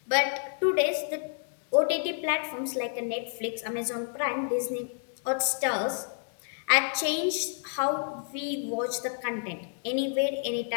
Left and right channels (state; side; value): silent; right; 58 dB below the other